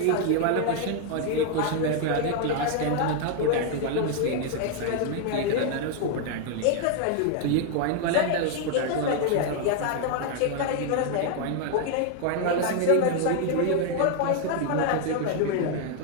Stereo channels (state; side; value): different; both; correlation 0.00